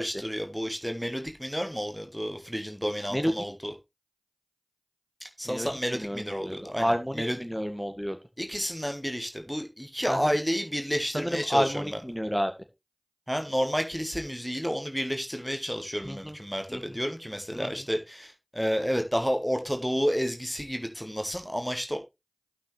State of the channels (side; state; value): both; identical; correlation 1.00